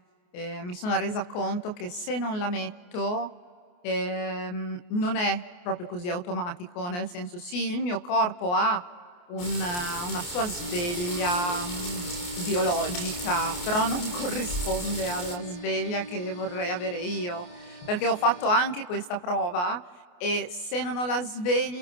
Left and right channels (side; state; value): right; late; 28 ms